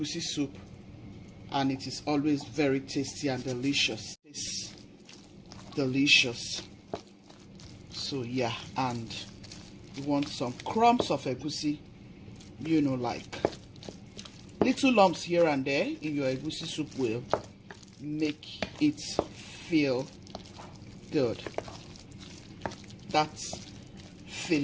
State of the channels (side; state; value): both; identical; correlation 1.00